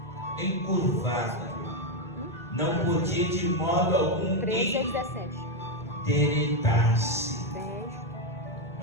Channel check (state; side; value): normal; both; correlation 0.06